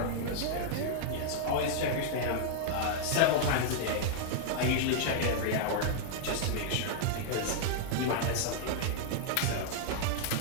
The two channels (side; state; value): both; different; correlation -0.01